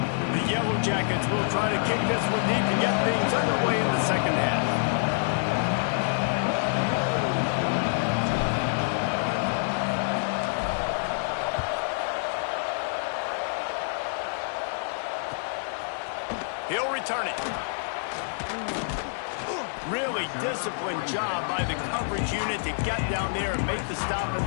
The Yellow Jackets will try to kick this one deep to get things underway in the second half. He'll return it. Really disciplined job by the coverage unit to get down there and make the stop at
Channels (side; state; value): right; silent; digital silence